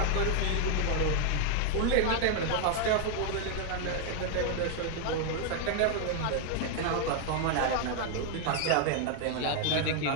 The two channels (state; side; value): different; both; correlation 0.00